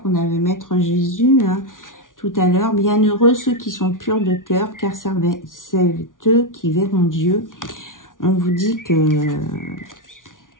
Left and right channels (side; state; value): right; late; 0.88 ms